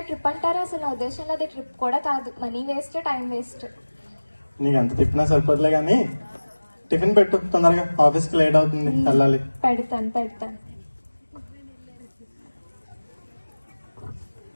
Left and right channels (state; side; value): inverted; both; correlation -1.00